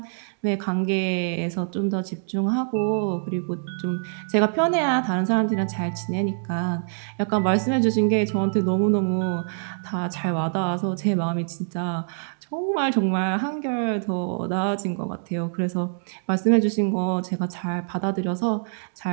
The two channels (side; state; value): left; silent; digital silence